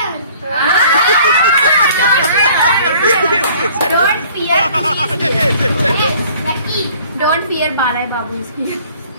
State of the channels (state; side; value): inverted; both; correlation -0.54